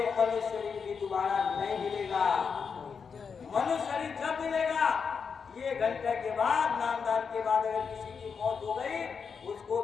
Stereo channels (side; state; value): right; quieter; 6.0 dB